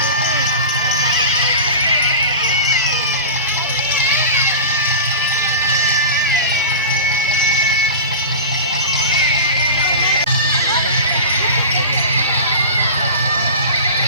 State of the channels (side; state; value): both; inverted; correlation -0.31